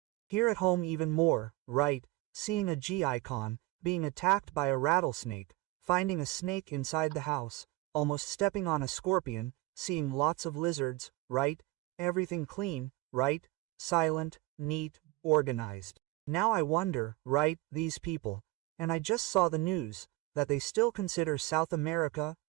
Here at home even more, right, seeing a G icon, being attacked by a rattlesnake, finding a snake inside the house, almost stepping on a scorpion, seeing lots of lizards, right, everything clean, right, silent, neat, organized. Now I wonder, right, these people, and I just saw the news, that they still consider South America,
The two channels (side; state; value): left; quieter; 19.5 dB